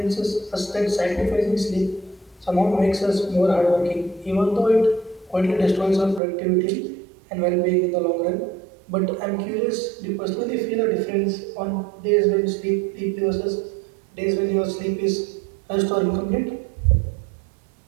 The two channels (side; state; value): left; drops out; at 6.2 s